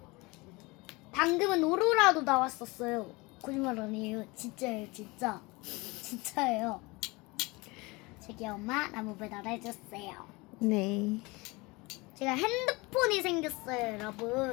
방금은 오로라도 나왔었어요. 거짓말 아니에요. 진짜예요. 진짜예요. 저기 엄마 나무 배달해줬어요. 네. 제가 핸드폰이 생겼어요,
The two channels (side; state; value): right; quieter; 24.5 dB